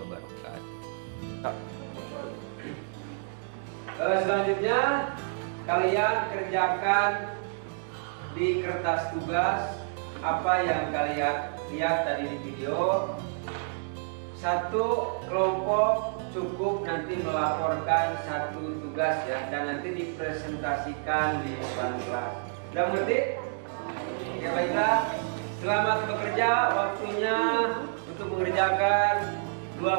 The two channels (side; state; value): left; silent; digital silence